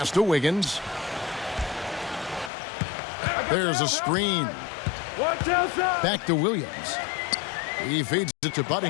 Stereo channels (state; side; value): drops out; right; at 2.5 s